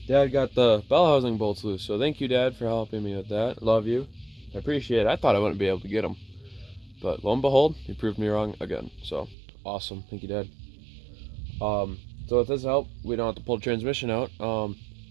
Dad got the bell housing bolts loose. So thank you, Dad, for helping me with that. Love you. I appreciate it. I thought I wouldn't be able to get them, but lo and behold, you proved me wrong again. So awesome. Thank you, Dad. So with this help, we don't have to pull the transmission out.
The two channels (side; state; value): left; drops out; at 9.3 s